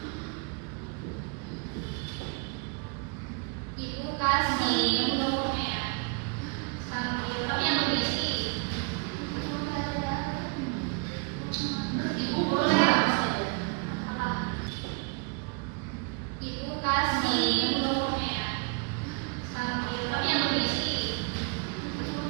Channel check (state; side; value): quieter; left; 33.4 dB